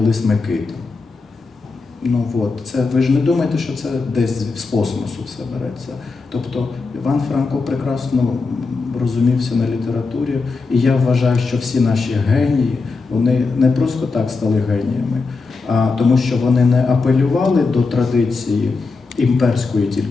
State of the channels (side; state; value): right; quieter; 4.2 dB